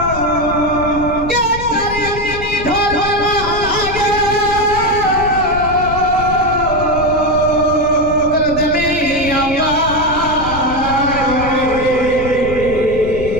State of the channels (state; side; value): noise; left; rumble, 9 dB below the sound